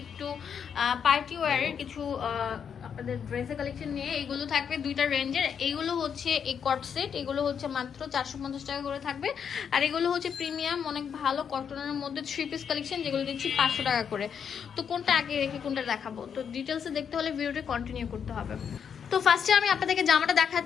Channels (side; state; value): right; quieter; 7.4 dB